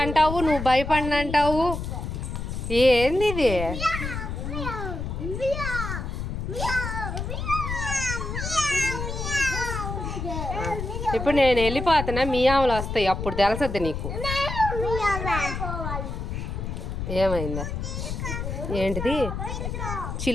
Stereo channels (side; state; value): left; noise; rumble, 4 dB below the sound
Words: అంటావు, నువ్వు భయపడినంటావు. ఏంది ఇది? ఇప్పుడు నేను వెళ్ళిపోతున్నా, మియావులు వస్తాయి అప్పుడు తెలుసద్ది నీకు. ఏమైందా? ఏంటిది?